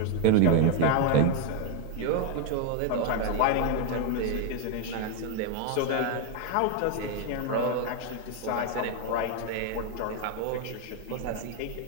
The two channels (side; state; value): both; different; correlation 0.01